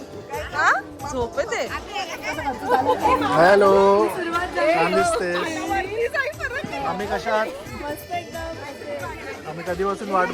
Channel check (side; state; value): both; identical; correlation 1.00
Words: हा झोप येते हॅलो छान दिसते आम्ही कशा आहात आम्ही कधीपासून वाट